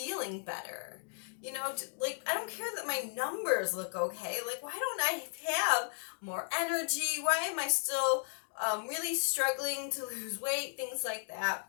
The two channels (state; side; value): silent; right; digital silence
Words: better? You know, like, I don't care that my numbers look okay. Like, why don't I have more energy? Why am I still really struggling to lose weight? Things like that.